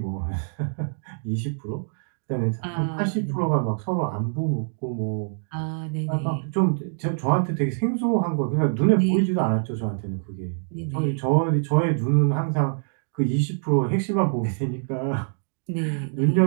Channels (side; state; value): left; silent; digital silence